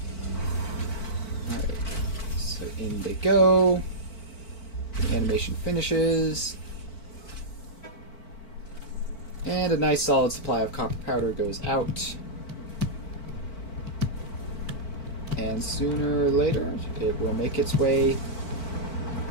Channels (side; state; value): right; late; 4.5 ms